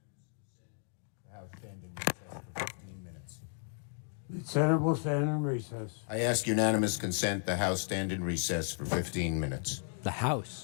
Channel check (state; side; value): silent; right; 55 dB below the other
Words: The Senate will stand in recess. I ask unanimous consent the House stand in recess for 15 minutes. The